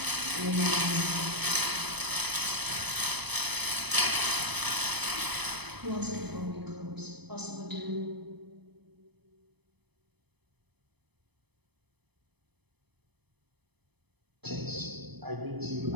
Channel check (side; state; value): left; late; 0.98 ms